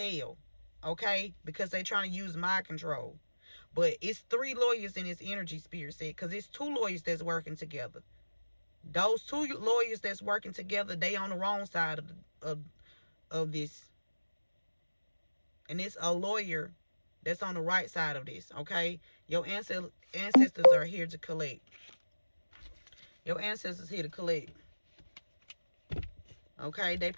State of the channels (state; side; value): inverted; both; correlation -1.00